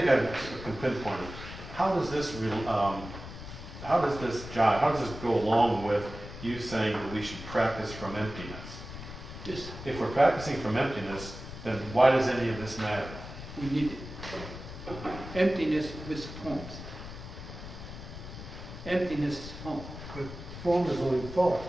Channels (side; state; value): left; noise; rumble, 11 dB below the sound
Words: I can pinpoint it. How does this jive, how does this go along with you saying that we should practice from emptiness? Yes, If we're practicing from emptiness, then why does any of this matter? we need it. Emptiness with forms. Emptiness is form. but form is only thought.